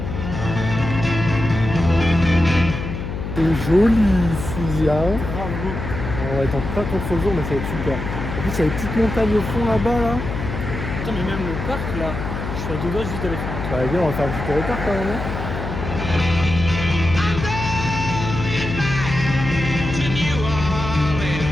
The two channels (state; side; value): noise; left; hum, 5 dB below the sound